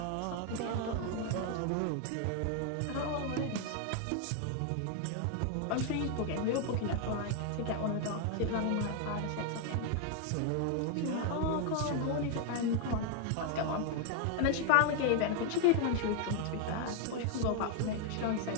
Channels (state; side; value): different; both; correlation 0.00